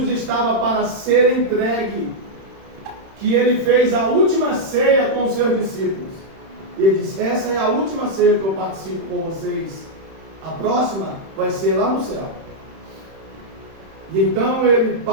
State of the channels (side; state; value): left; late; 31 ms